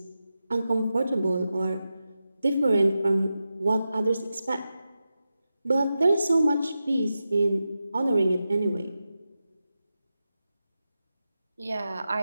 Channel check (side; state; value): both; inverted; correlation -0.91